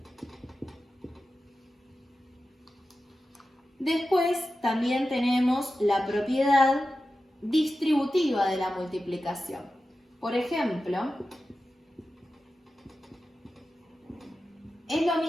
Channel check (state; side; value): normal; both; correlation 0.93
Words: Después también tenemos la propiedad distributiva de la multiplicación. Por ejemplo, es lo